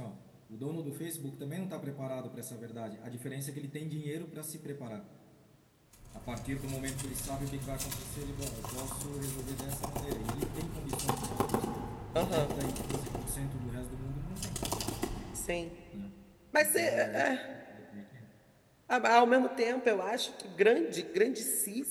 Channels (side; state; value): both; identical; correlation 1.00